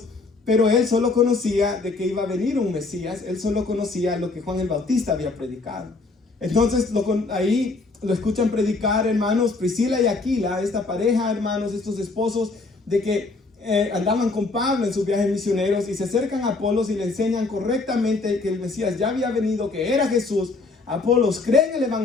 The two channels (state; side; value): quieter; right; 3.7 dB